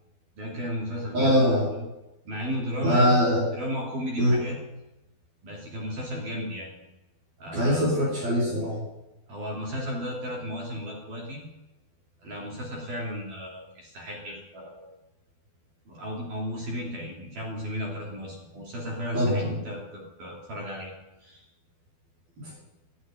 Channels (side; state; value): left; late; 12 ms